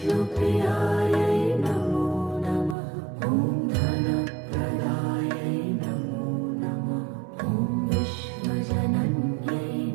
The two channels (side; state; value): left; drops out; at 2.8 s